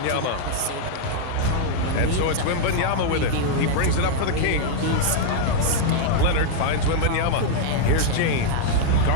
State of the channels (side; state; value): both; different; correlation -0.01